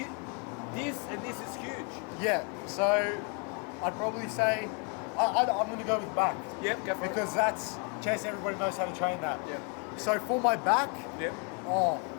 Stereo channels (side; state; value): right; quieter; 36.3 dB